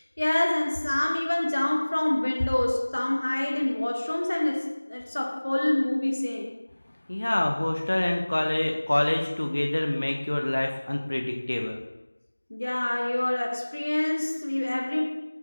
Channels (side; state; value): both; inverted; correlation -1.00